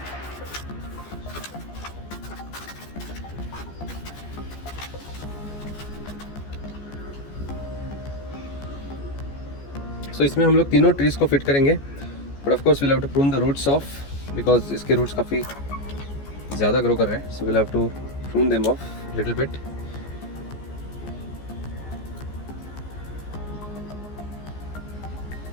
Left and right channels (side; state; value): right; late; 14 ms